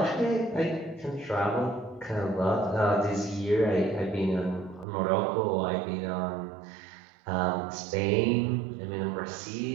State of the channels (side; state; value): left; drops out; at 4.9 s